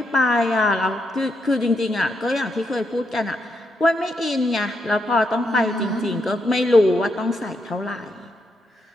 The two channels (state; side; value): normal; both; correlation 0.81